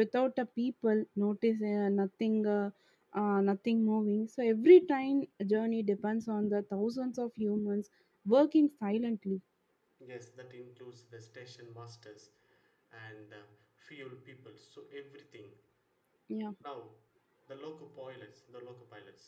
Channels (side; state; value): both; identical; correlation 1.00